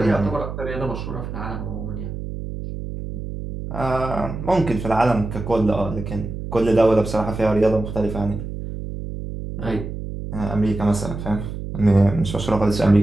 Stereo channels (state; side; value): noise; right; hum, 7 dB below the sound